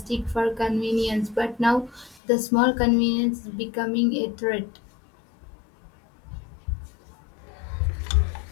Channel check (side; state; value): right; drops out; at 2.2 s